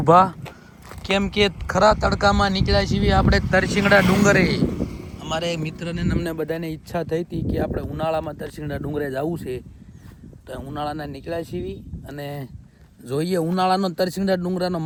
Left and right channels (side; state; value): both; identical; correlation 1.00